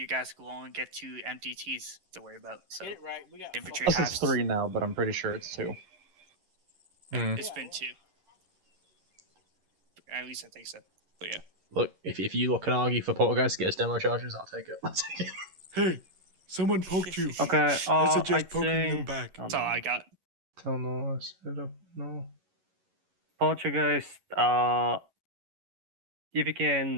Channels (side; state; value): left; late; 11 ms